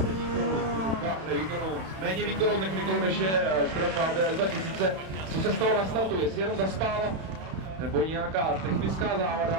méně výkonnou technikou, než je Škoda Fabia S2000. Co se stalo na startu? Jestli jenom zaspal, nebo nějaká technická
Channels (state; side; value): late; left; 31 ms